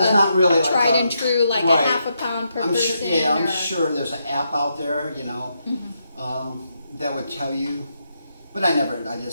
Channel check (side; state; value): both; inverted; correlation -0.81